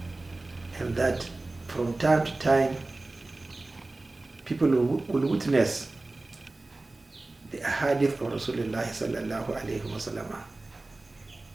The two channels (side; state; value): left; quieter; 3.1 dB